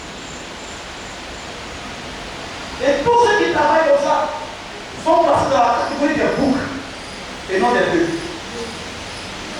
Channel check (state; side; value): identical; both; correlation 1.00